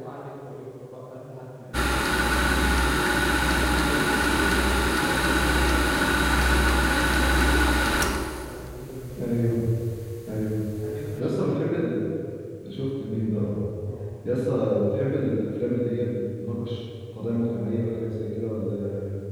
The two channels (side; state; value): both; identical; correlation 1.00